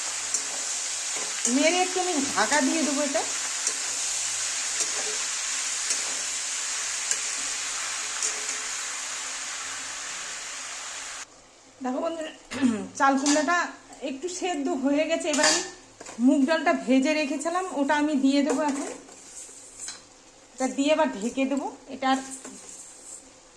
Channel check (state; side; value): identical; both; correlation 1.00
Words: নেড়ে একটু আমি ঢাকা দিয়ে দেবো এটা। দেখো বন্ধুরা, চাল কুমড়াটা একটু সেদ্ধ হয়ে গেছে। এবার আমি মুগ ডালটা ভেজে রেখেছিলাম, ওটা আমি দিয়ে দেবো এখন। এটা দিয়ে এবার ঢেকে দেবো। এটা